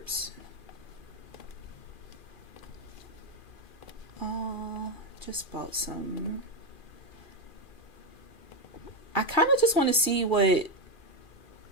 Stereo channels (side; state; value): right; late; 2.4 ms